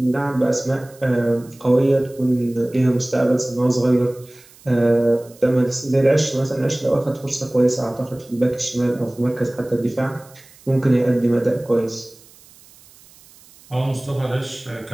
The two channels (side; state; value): right; noise; hiss, 25 dB below the sound